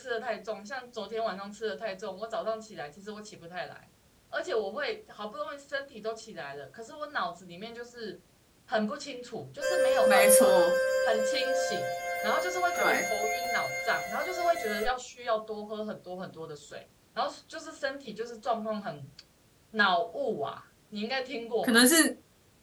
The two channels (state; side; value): identical; both; correlation 1.00